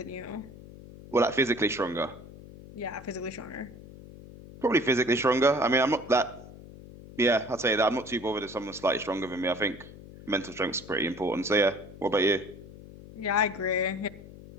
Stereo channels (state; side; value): noise; left; hum, 17 dB below the sound